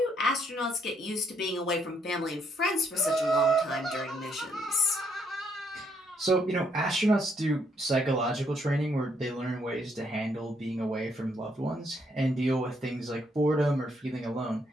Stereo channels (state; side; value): normal; both; correlation 0.72